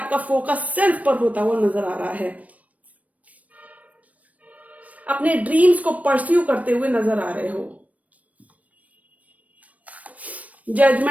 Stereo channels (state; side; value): late; left; 0.069 ms